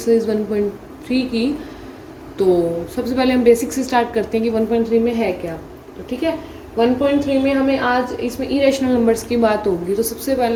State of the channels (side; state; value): both; identical; correlation 1.00